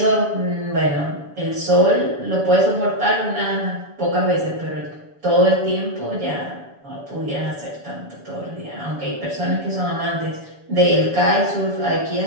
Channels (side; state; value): left; late; 7.1 ms